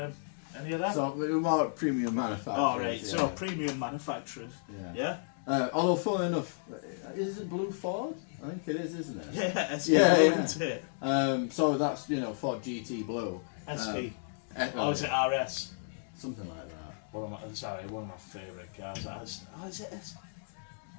Any of that? So we're more premium manufacturers. Oh, right. Yeah. So premium manufacturers. Yeah. Although, funnily enough, is it Blue Ford? I think it is, isn't it? Yeah, SP isn't it? So that's Ford GT Blue. SP. Is it RS? Something like that. One of my favourite cars. Is it SP?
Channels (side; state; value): right; silent; digital silence